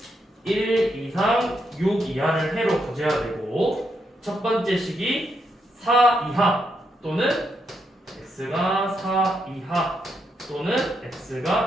1 이상 6 이하를 해로 가져야 되고 첫 번째 식이 4 이하 또는 x가 4 이하 또는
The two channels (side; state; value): both; normal; correlation 0.80